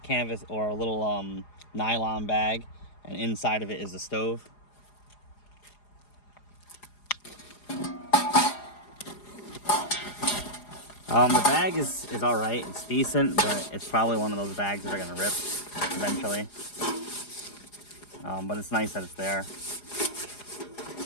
or a little nylon bag, and inside of it is the stove. The bag is all right. It's decent, but it's probably one of those bags that are gonna rip eventually. But it's nice that it's there.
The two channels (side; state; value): right; late; 4.9 ms